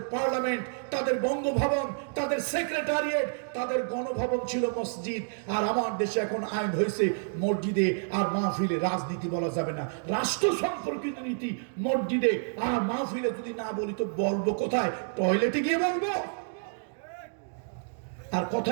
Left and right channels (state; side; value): silent; left; digital silence